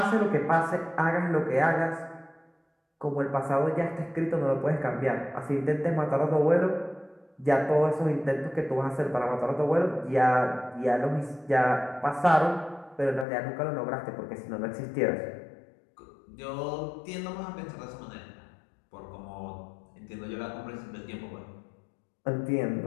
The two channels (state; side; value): drops out; right; at 13.2 s